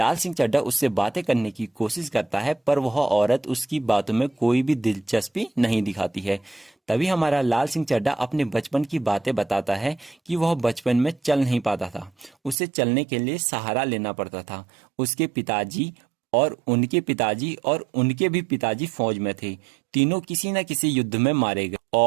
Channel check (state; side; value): drops out; left; at 12.6 s